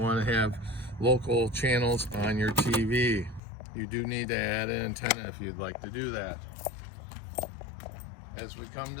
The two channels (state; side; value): drops out; right; at 3.4 s